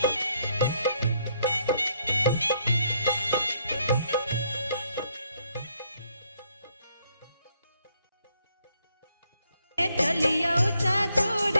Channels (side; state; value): both; inverted; correlation -0.72